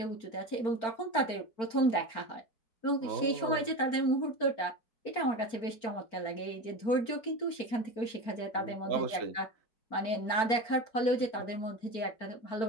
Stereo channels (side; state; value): right; late; 4.4 ms